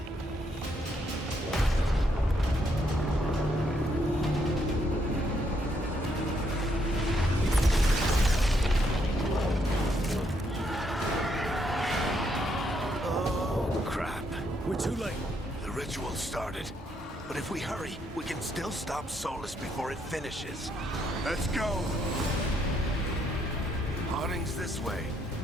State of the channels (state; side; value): normal; both; correlation 0.75